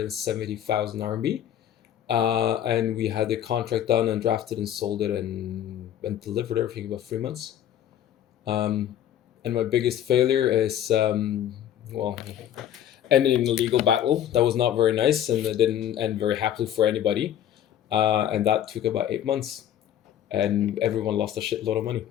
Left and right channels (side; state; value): right; quieter; 10.8 dB